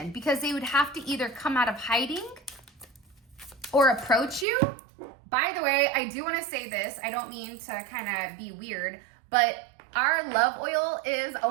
because they would have to either come out of hiding or approach you. By the way, I do want to say this. I don't mean to kind of be weird, but our love oil is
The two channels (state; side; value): drops out; left; at 4.5 s